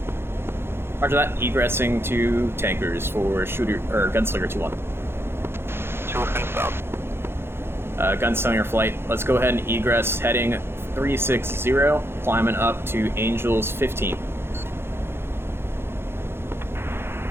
Roger that. Egressing to tankers for Gunslinger 2-1. 2 and south. Gunslinger flight. Let's go ahead and egress heading 360, climbing up to Angels 15.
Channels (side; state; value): left; late; 0.11 ms